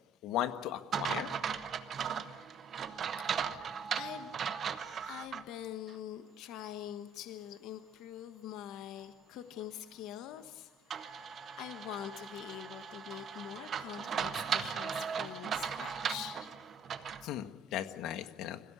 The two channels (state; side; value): normal; both; correlation 0.57